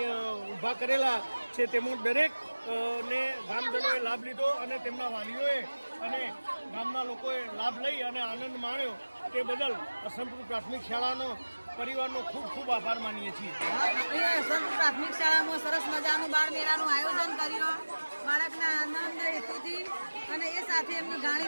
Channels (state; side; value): inverted; both; correlation -1.00